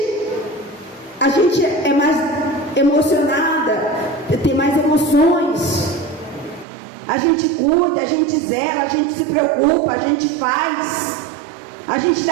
é mais emocionada, tem mais emoções. A gente cuida, a gente zela, a gente se preocupa, a gente faz, a gente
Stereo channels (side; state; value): left; drops out; at 6.7 s